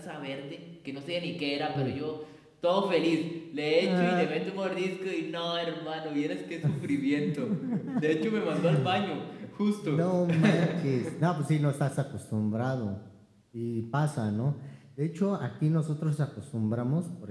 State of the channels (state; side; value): identical; both; correlation 1.00